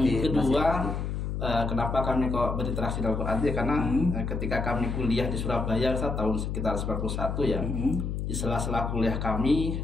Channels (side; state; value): left; noise; hum, 3 dB below the sound